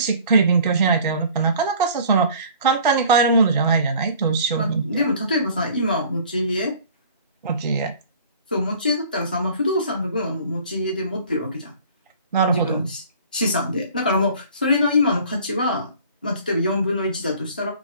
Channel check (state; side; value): inverted; both; correlation -0.49